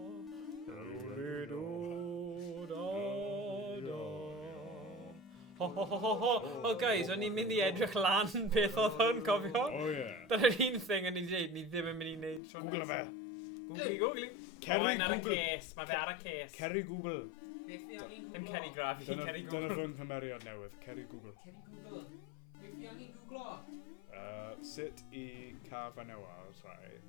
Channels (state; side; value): drops out; right; at 12.4 s